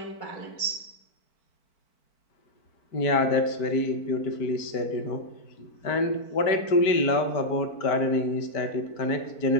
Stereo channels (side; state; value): right; late; 4.5 ms